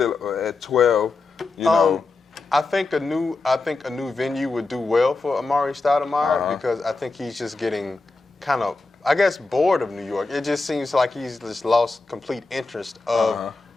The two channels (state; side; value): quieter; right; 3.6 dB